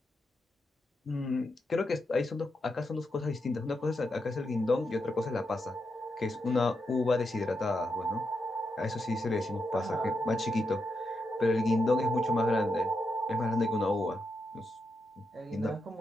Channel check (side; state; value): both; normal; correlation 0.84